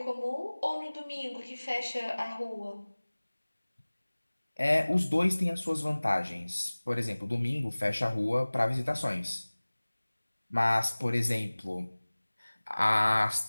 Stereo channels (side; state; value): both; inverted; correlation -1.00